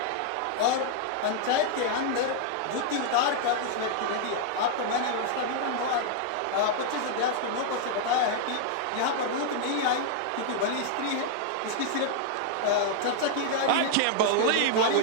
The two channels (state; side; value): different; both; correlation -0.01